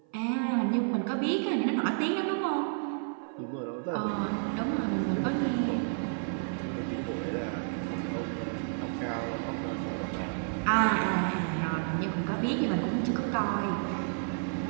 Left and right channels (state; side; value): silent; left; 57 dB below the other